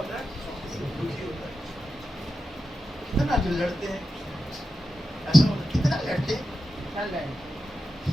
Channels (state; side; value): normal; both; correlation 0.90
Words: है? दुखी होता है। कितना जो लड़ते हैं, ऐसा होता है, कितना लड़ते हैं।